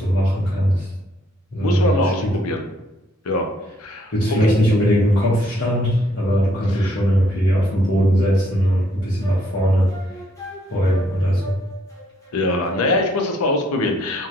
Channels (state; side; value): normal; both; correlation 0.68